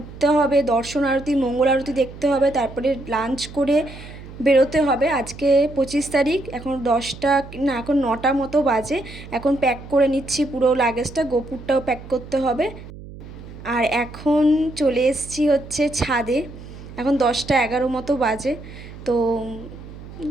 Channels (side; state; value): right; noise; hum, 15 dB below the sound